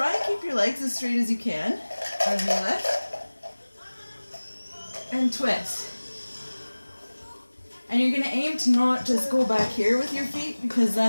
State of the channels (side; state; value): both; inverted; correlation -1.00